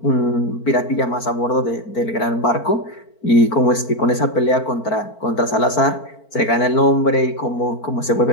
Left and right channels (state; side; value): late; right; 4.5 ms